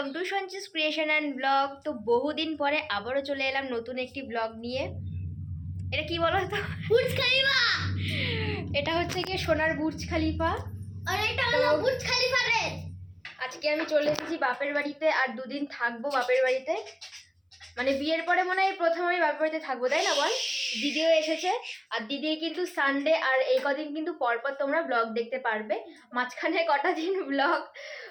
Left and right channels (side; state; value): both; identical; correlation 1.00